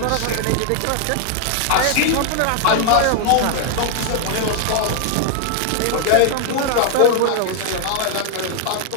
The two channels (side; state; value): both; different; correlation 0.00